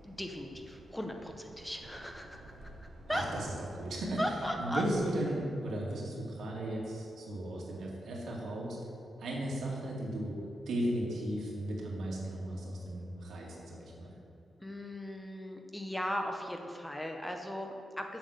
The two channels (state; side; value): normal; both; correlation 0.86